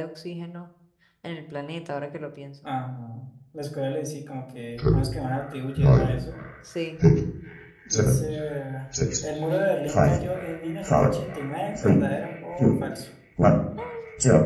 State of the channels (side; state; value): both; identical; correlation 1.00